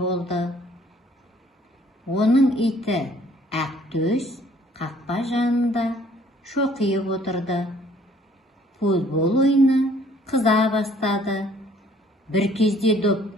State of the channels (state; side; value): normal; both; correlation 0.59